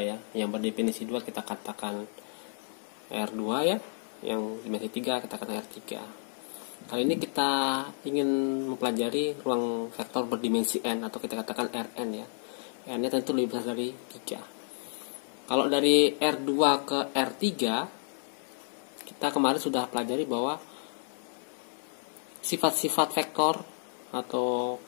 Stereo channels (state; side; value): silent; right; 57 dB below the other